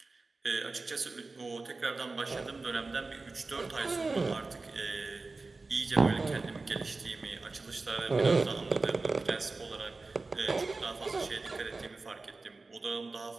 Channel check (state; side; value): quieter; left; 3.6 dB